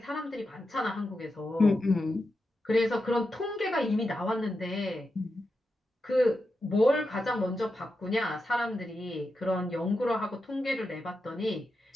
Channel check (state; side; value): normal; both; correlation 0.88